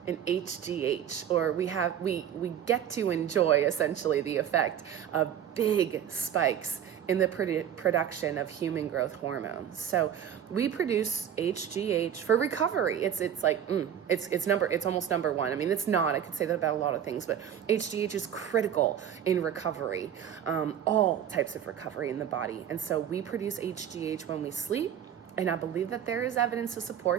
in HGH, or we get to enjoy essentially the effect of big spikes in the production of human growth hormones. So we produce HGH for recovery. It's almost number one. I mean, it's not. I could say that about a lot of things, but HGH is critical in recovery, all types of recovery in the body. And so we produce HGH when we sleep. And I believe that there is evidence to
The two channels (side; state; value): left; quieter; 9.4 dB